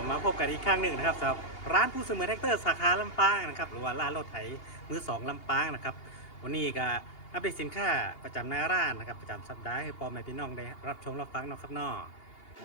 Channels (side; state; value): right; late; 2.8 ms